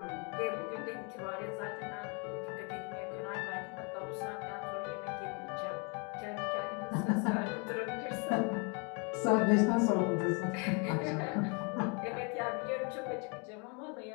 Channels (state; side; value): quieter; right; 34.3 dB